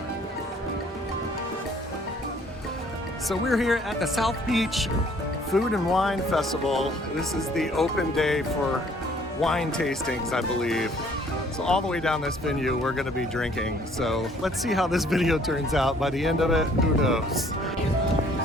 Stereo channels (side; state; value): both; normal; correlation 0.59